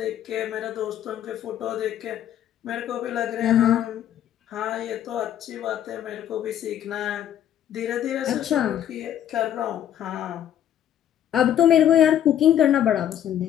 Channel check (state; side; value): quieter; right; 10.6 dB